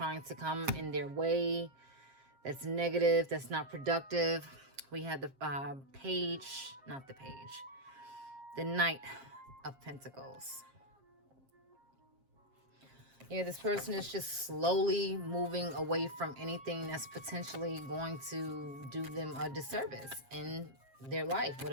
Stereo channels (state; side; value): late; left; 7.5 ms